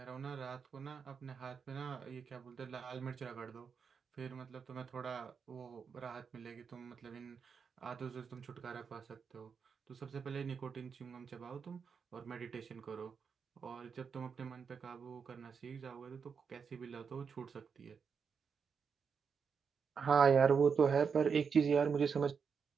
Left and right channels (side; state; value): left; quieter; 6.1 dB